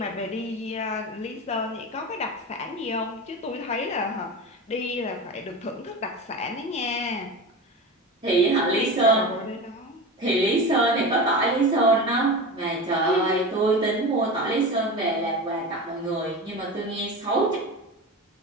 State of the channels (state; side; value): normal; both; correlation 0.27